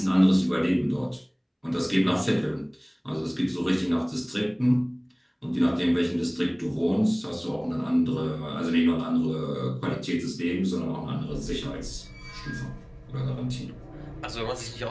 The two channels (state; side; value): identical; both; correlation 1.00